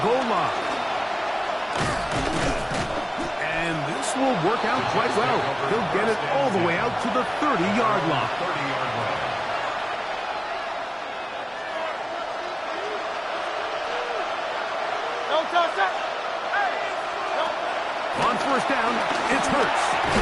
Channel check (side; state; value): both; identical; correlation 1.00